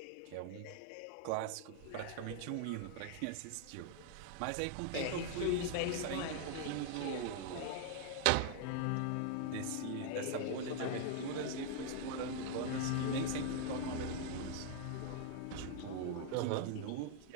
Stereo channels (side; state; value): both; different; correlation 0.00